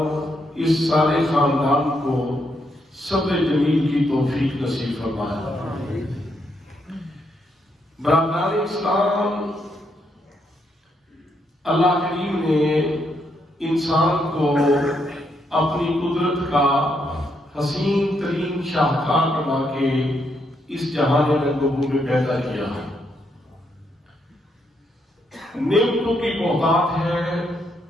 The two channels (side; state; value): both; normal; correlation 0.77